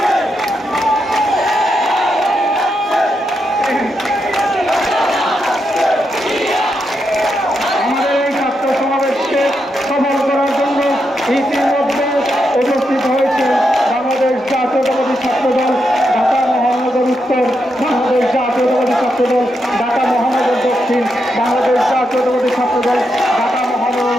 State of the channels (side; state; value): both; normal; correlation 0.83